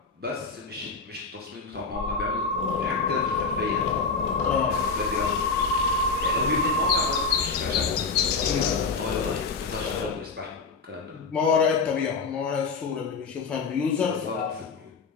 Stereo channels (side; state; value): right; quieter; 4.6 dB